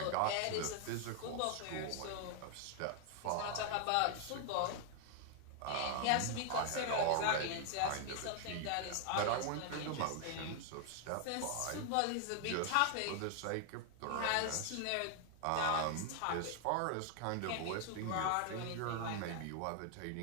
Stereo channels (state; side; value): different; both; correlation 0.00